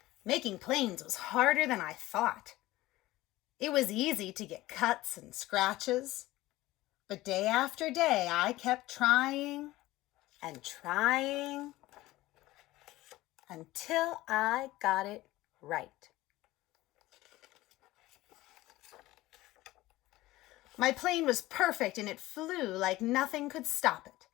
Making planes was harder than I thought. It was easy to get cuts and scratches, but day after day I kept trying and trying until I got it right. My plane was perfect and it flew like nothing could stop it.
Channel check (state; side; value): quieter; right; 17.7 dB